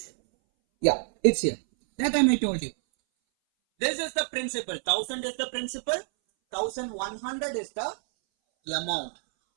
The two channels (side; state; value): left; silent; 59 dB below the other